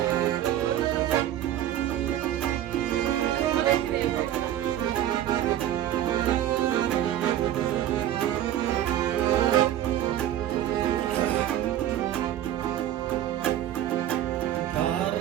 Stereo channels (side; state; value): left; quieter; 12.0 dB